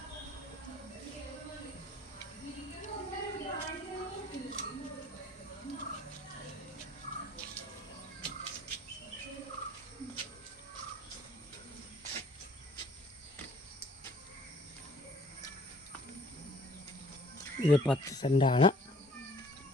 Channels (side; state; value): both; normal; correlation 0.54